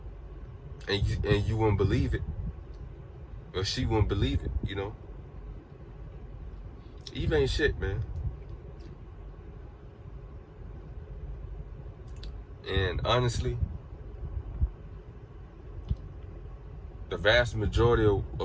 and you wouldn't believe it. Or she wouldn't believe it, Eve ain't shit, man. And honestly, the vast majority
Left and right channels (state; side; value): identical; both; correlation 1.00